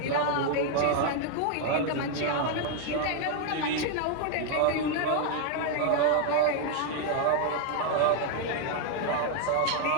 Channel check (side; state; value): both; different; correlation 0.00